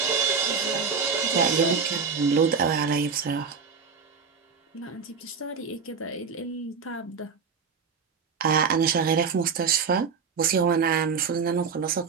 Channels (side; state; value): left; quieter; 5.7 dB